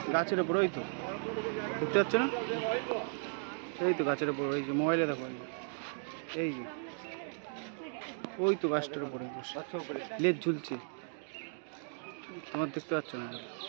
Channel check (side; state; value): left; silent; 54 dB below the other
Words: গাছের উপর ওই তো দেখতে পাচ্ছ না এই তো গাছের উপর ওই যে মোবাইলে দেখো এই যে ওই তো গাছটার উপরে লেজ ঝুলছে তোমার দেখতে পাচ্ছ না